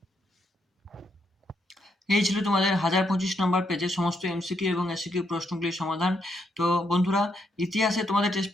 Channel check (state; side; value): normal; both; correlation 0.77